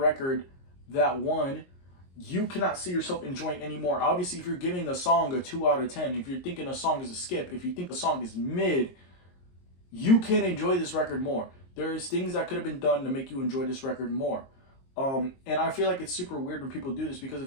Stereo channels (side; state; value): right; late; 22 ms